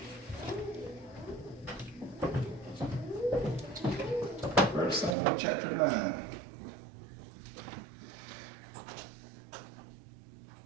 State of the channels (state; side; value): drops out; left; at 5.2 s